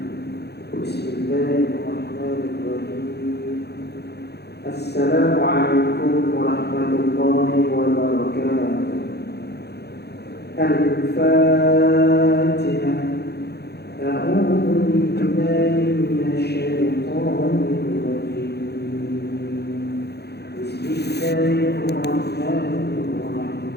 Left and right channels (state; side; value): late; right; 0.48 ms